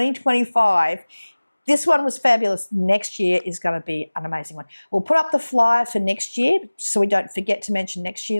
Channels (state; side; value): inverted; both; correlation -1.00